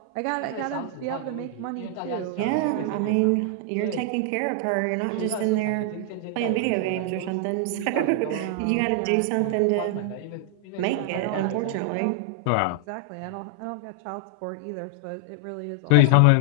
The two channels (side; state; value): both; different; correlation 0.00